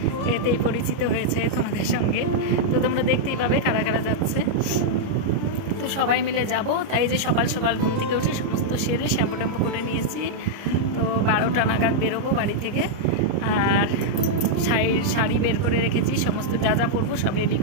এতেই পরিচিত হয়েছে তোমাদের সঙ্গে। তো তোমরা দেখতেই পাবে কারা কারা যাচ্ছে। তো সবাই মিলে যাব, তাই যে সকাল সকাল ঘুম থেকে উঠে সমস্ত সেরে শ্যাম্পু ট্যাম্পু করে নিয়েছি। তো 12টা নাগাদ বেরোবো বাড়ি থেকে। আর শাড়ি বের করে রেখেছি, সমস্ত যা যা পরবো সব রেডি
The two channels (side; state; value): left; late; 29 ms